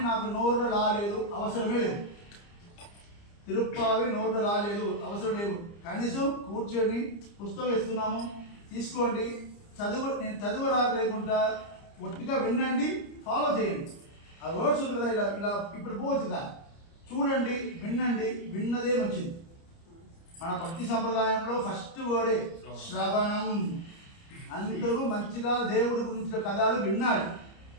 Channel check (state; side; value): late; right; 30 ms